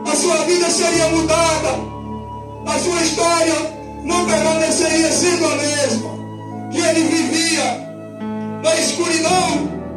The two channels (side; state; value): both; identical; correlation 1.00